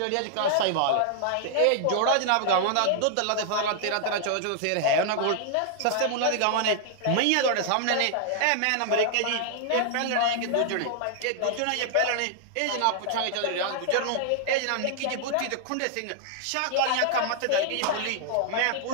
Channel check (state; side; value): different; both; correlation -0.01